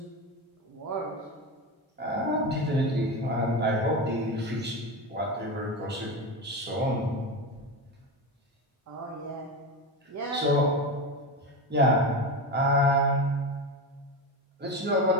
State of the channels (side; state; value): both; normal; correlation 0.20